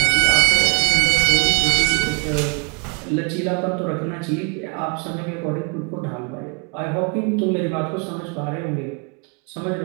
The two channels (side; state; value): left; quieter; 34.0 dB